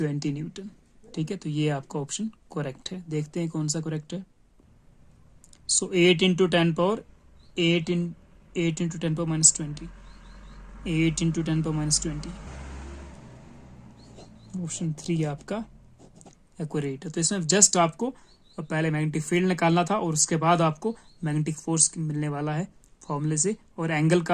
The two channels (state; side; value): identical; both; correlation 1.00